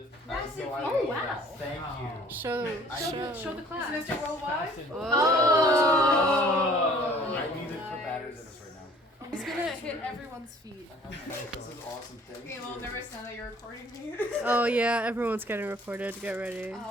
Oh, wow. Thank you. Show the class. Mr. Worldwide? Oh. I need to put batteries in this right now. He's gonna hit everyone's feet. This is awesome. Thank Okay, you. well, never said that you're recording me. Oh yeah, everyone's getting recorded. Get ready.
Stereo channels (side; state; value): both; normal; correlation 0.54